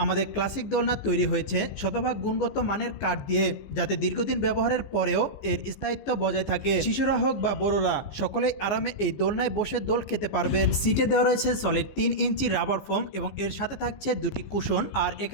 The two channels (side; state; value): right; late; 15 ms